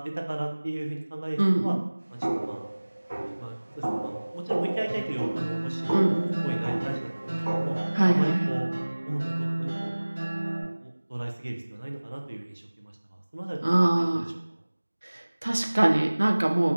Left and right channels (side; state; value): both; inverted; correlation -1.00